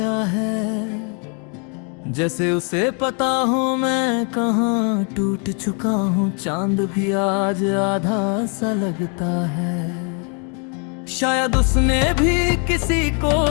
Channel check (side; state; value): right; quieter; 38.0 dB